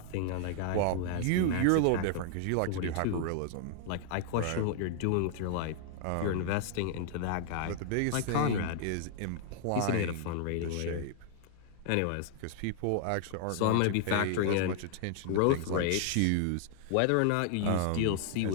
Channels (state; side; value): different; both; correlation 0.00